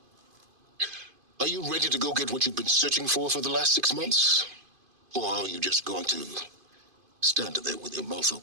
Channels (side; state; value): left; late; 2.5 ms